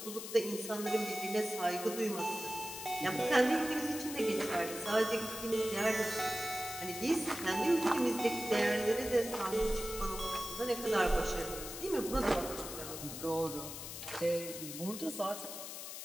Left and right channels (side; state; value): left; noise; hiss, 9 dB below the sound